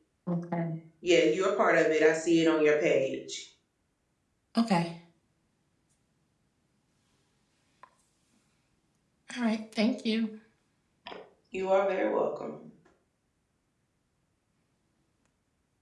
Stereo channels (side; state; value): both; identical; correlation 1.00